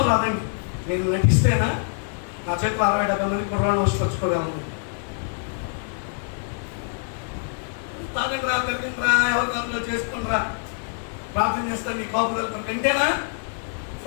రాదండి. నేను నటిస్తేనా నా చేతిలో 60-70 మంది కుర్రాళ్ళు వచ్చుకోగలను. తాగండిరా, తిరగండిరా, ఎవరి కంట్లో చేసుకుంటారా, ప్రార్థన చేస్తాను నీ కాపుదల కంటేనా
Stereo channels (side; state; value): right; silent; digital silence